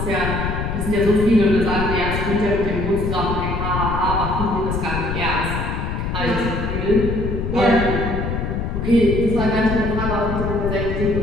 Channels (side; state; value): left; noise; rumble, 2 dB below the sound